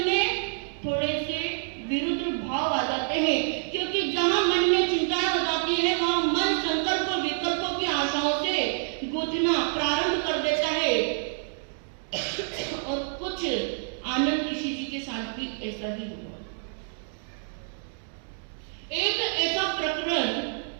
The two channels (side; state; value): left; silent; digital silence